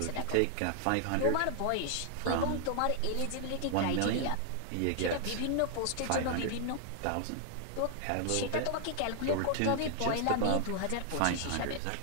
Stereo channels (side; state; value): both; different; correlation 0.00